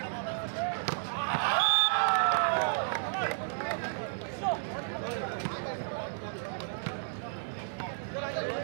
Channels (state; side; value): silent; left; digital silence